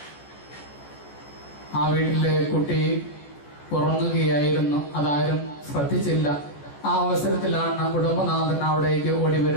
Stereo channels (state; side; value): late; right; 14 ms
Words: ആ വീട്ടിലെ കുട്ടി ഉറങ്ങുകയായിരുന്നു. അതാരും ശ്രദ്ധിച്ചില്ല. ആ അവസരത്തിലാണ് കുടുംബനാഥൻ അവിടേക്ക് ഓടി